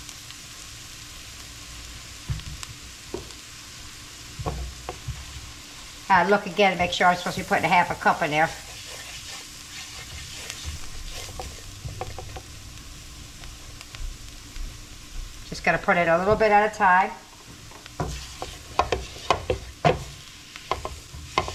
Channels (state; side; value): identical; both; correlation 1.00